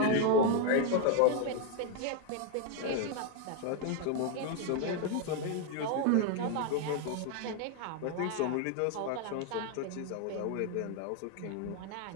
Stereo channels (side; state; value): both; different; correlation 0.01